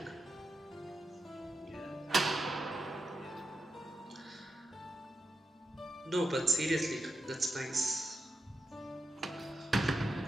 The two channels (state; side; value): normal; both; correlation 0.87